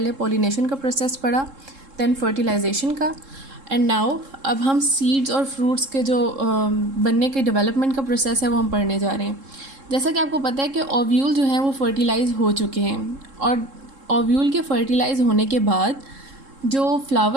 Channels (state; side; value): late; left; 3.7 ms